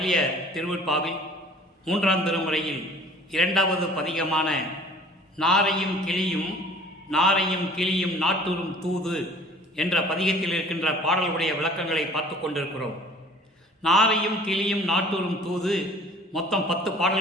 திருவருட்பாவில் 3ஆம் திருமுறையில் 2வது பதிகமான நாரையும் கிளியும் நாட்டுறும் தூது என்ற பதிகத்தில் இருக்கின்ற பாடல்களுடைய விளக்கங்களை பார்த்து கொண்டிருக்கிறோம். நாரையும் கிளியும் நாட்டுறும் தூது மொத்தம் 10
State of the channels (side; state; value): both; normal; correlation 0.49